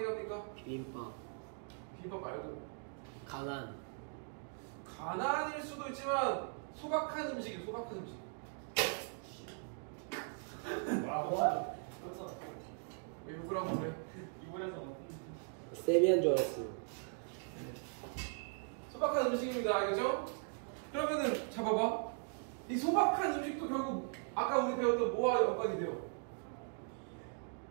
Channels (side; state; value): left; silent; 52 dB below the other